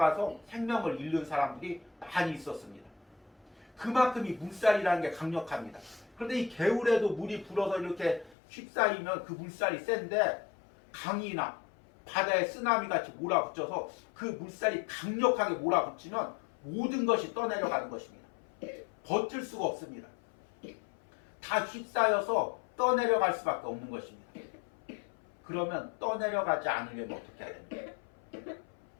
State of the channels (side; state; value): right; drops out; at 8.3 s